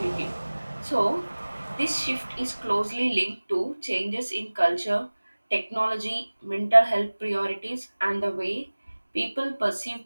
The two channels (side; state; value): both; inverted; correlation -1.00